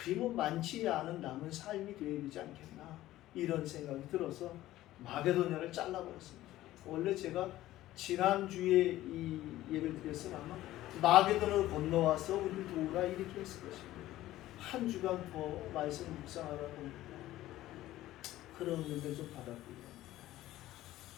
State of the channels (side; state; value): right; quieter; 15.1 dB